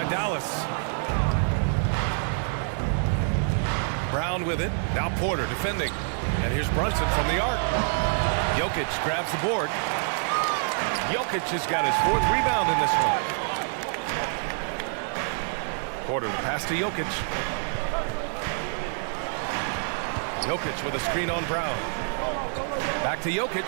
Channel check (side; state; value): left; silent; 60 dB below the other